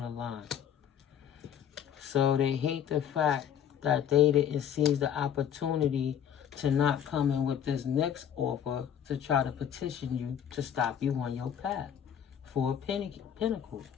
the line. So they hate the fact that they didn't seize the opportunity to not come in with this next offer to try to petition you to stop you on your path. 4 Pentacles.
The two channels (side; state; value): right; quieter; 9.1 dB